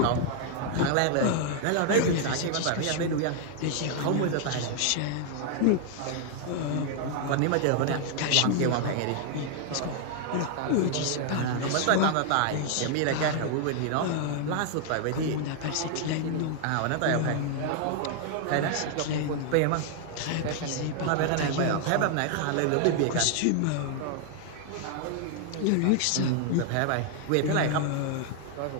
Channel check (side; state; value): both; different; correlation 0.00